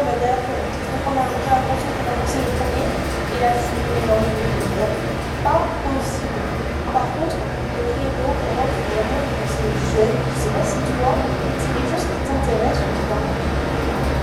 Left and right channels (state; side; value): identical; both; correlation 1.00